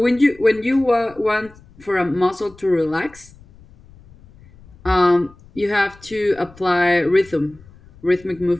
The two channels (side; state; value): left; noise; rumble, 25 dB below the sound